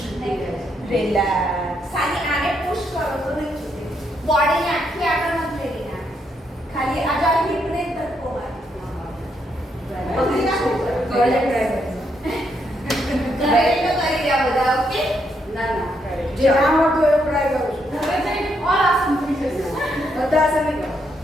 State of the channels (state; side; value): normal; both; correlation 0.77